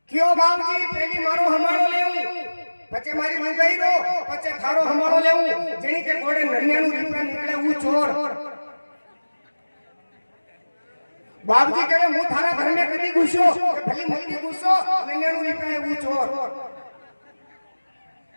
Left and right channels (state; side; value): inverted; both; correlation -1.00